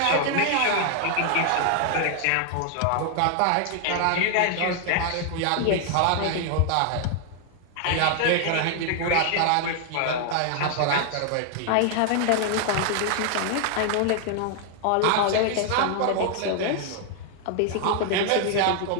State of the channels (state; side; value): different; both; correlation 0.00